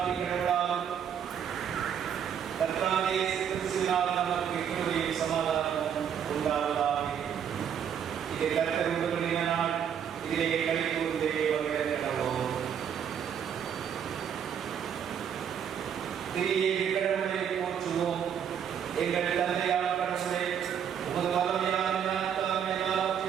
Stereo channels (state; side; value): quieter; left; 8.4 dB